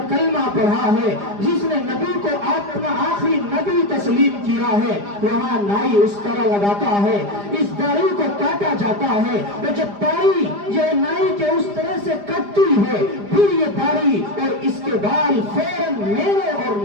کلمہ پڑھا ہے، جس نے نبی کو اپنا آخری نبی تسلیم کیا ہے، وہاں نائی اس طرح لگاتا ہے، اس داڑھی کو کاٹا جاتا ہے، تو جب داڑھی یہ نائی کے اس طرح سے کٹتی ہے پھر یہ داڑھی اور اس کے بال فوراً میرے اور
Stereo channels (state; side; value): late; left; 4.9 ms